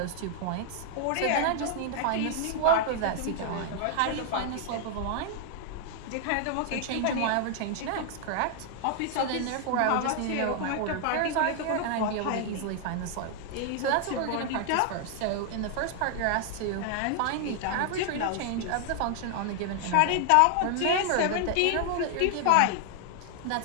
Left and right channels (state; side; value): different; both; correlation 0.00